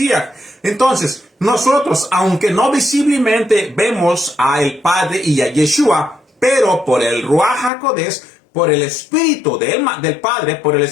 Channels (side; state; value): right; drops out; at 7.7 s